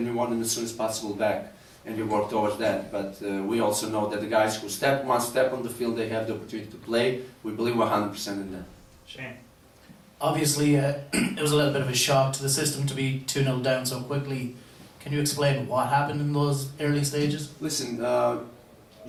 we want them as soon as possible back, and we work towards that. But we also know that the guys who one step on the field, they have the opportunity to play. We believe 100% in that. Shane? Obviously, it was a little bit of a shock to the system to be 2-0 down so quickly. Can you explain what happened in those early stages? Listen,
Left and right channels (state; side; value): identical; both; correlation 1.00